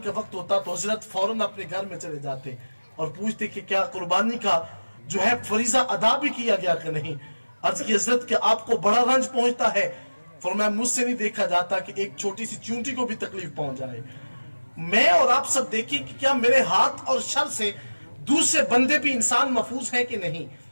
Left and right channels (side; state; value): both; inverted; correlation -1.00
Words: وقت ہوتا تو حضرت فوراً اپنے گھر میں چلے جاتے اور پوچھتے کہ کیا قربانی کا جو ہے فریضہ ادا بھی کیا گیا کہ نہیں. عرض کی حضرت کہ آپ کو بڑا رنج پہنچتا ہے؟ فرمایا مجھ سے نہیں دیکھا جاتا کہ ایک چھوٹی سی چونٹی کو بھی تکلیف پہنچ جائے. میں اور آپ سب دیکھیں کہ کیا میرے ہاتھ اور شر سے دوسرے بندے بھی انسان محفوظ ہیں کہ نہیں.